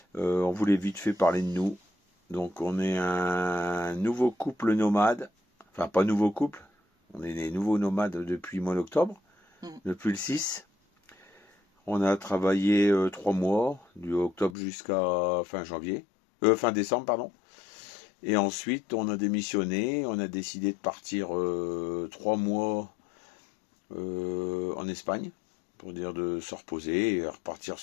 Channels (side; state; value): right; drops out; at 14.6 s